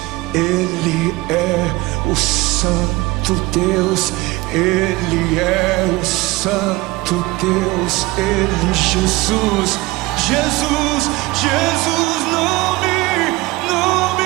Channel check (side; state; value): left; quieter; 21.0 dB